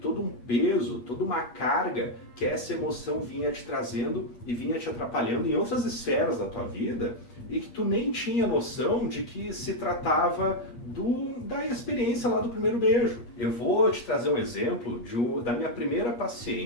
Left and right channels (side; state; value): right; late; 8.5 ms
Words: todo um peso, toda uma carga que essa emoção vinha te trazendo e vinha te atrapalhando em outras esferas da tua vida e que tu nem tinha noção de que se tratava da experiência lá do primeiro beijo. Eu vou te trazer um exemplo da minha primeira